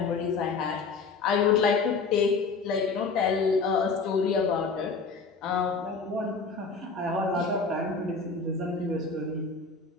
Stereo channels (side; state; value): right; quieter; 4.5 dB